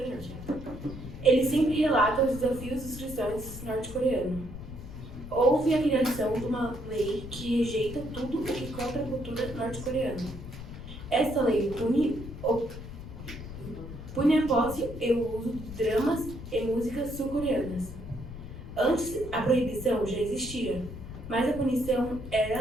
do Norte. Ele sempre relata os desafios dos cristãos norte-coreanos. Houve a criação de uma lei que rejeita tudo o que contra a cultura norte-coreana. Esta lei pune a posse e o uso de dramas e músicas sul-coreanas. Antes, a proibição já existia, mas a punição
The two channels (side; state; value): left; noise; rumble, 11 dB below the sound